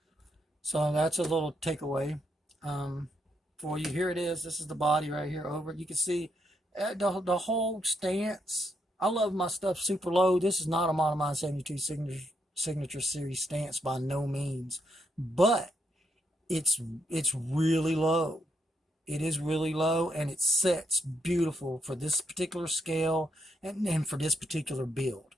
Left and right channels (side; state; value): both; normal; correlation 0.78